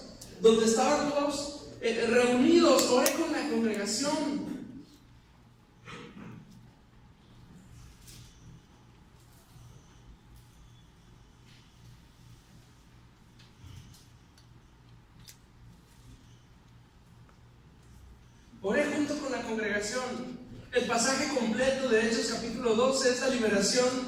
donde estaban todos reunidos. Oré con la congregación. Oré junto con la congregación. El pasaje completo de Hechos capítulo 12 es la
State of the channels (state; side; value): identical; both; correlation 1.00